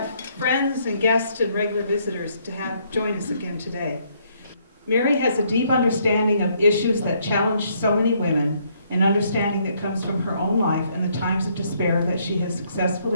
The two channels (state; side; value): inverted; both; correlation -0.70